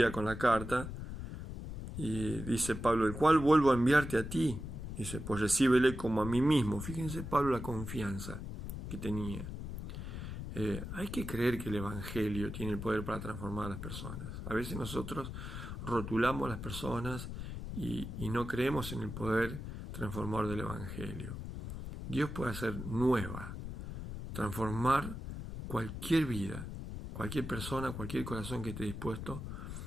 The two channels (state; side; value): noise; left; rumble, 7 dB below the sound